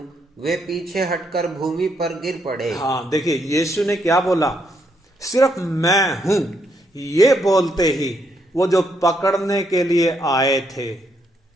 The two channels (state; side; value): normal; both; correlation 0.75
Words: वे पीछे हटकर भूमि पर गिर पड़े। हाँ देखिए, यीशु ने क्या बोला? सिर्फ मैं हूं ये बोलते ही वो जो पकड़ने के लिए आए थे,